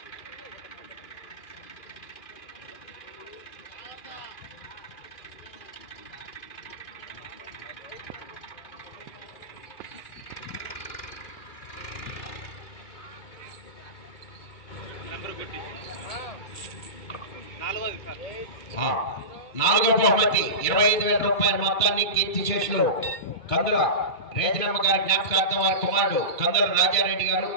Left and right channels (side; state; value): right; late; 2.3 ms